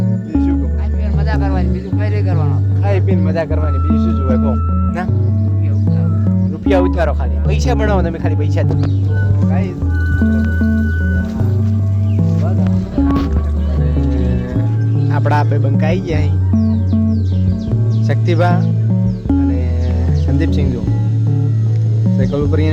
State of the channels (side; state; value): both; identical; correlation 1.00